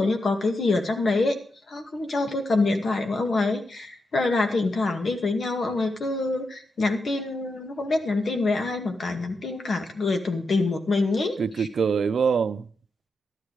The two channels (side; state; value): both; normal; correlation 0.85